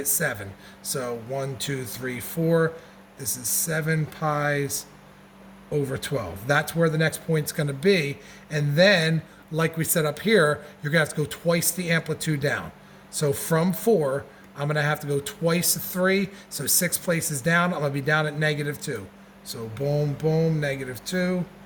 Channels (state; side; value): identical; both; correlation 1.00